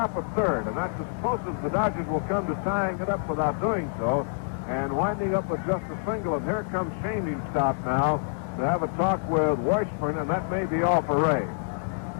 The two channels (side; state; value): right; silent; 60 dB below the other